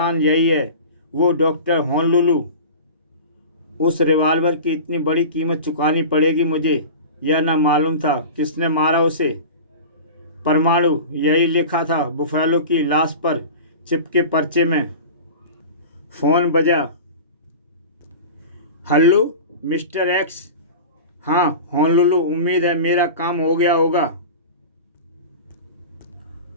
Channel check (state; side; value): inverted; both; correlation -0.33